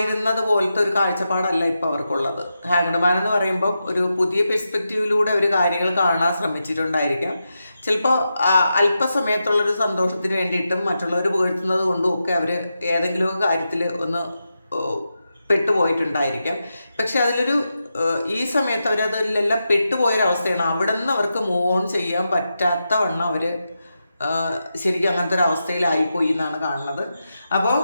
പോലത്തെ ഒരു കാഴ്ചപ്പാടല്ല ഇപ്പോൾ അവർക്കുള്ളത്. ഹാങ്ഡ് മാൻ എന്ന് പറയുമ്പം ഒരു പുതിയ പെർസ്പെക്റ്റീവിലൂടെ അവർ കാര്യങ്ങൾ കാണാൻ ശ്രമിച്ചിട്ടുണ്ടായിരിക്കാം. ചിലപ്പോൾ അല്പസമയത്തുള്ളൊരു സന്തോഷത്തിന് വേണ്ടിയിട്ടും മറ്റുള്ളവർ പുകഴ്ത്തുന്നത് കൊണ്ടും ഒക്കെ അവർ ഏതെങ്കിലുമൊക്കെ കാര്യത്തിൽ ഒന്ന് പെട്ടുപോയിട്ടുണ്ടായിരിക്കാം. പക്ഷെ അതിലൊരു ഈ സമയത്ത് അവരതിലെല്ലാം പെട്ടുപോയൊരവസ്ഥയാണ്. അവിടെ നിന്ന് അവർക്ക് മൂവ് ഓൺ ചെയ്യാൻ പറ്റാത്ത വണ്ണം അവർ ശരിക്കും അങ്ങനത്തെ ഒരു അവസ്ഥയിലായിപ്പോയി എന്നാണ് കാണുന്നത്. അപ്പോൾ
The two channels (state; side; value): inverted; both; correlation -0.88